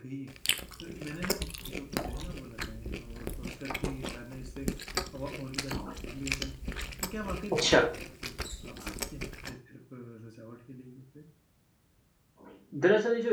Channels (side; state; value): both; identical; correlation 1.00